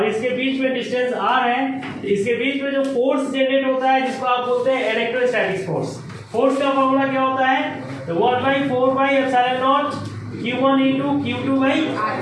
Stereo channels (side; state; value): both; identical; correlation 1.00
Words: इसके बीच में डिस्टेंस r है, तो इसके बीच में जो फोर्स जनरेट होता है जिसको आप बोलते हैं इलेक्ट्रोस्टैटिक फोर्स। फोर्स का फॉर्मूला क्या होता है, तो 1/4πε0 q1 ×